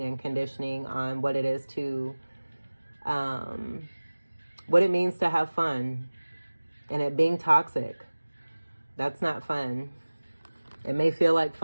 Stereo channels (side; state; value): both; inverted; correlation -1.00